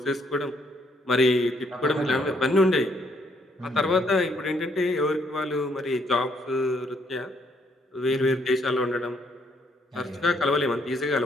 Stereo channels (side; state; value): both; normal; correlation 0.70